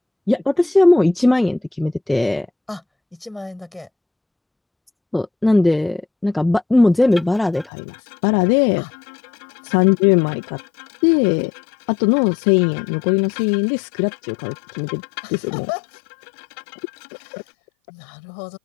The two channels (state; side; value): drops out; right; at 7.7 s